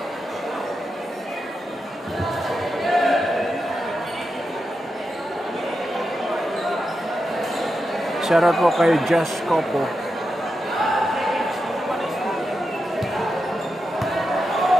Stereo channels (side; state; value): both; normal; correlation 0.88